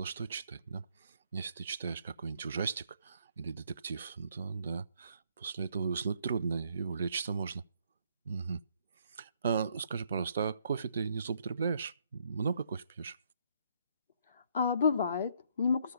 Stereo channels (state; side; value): inverted; both; correlation -0.69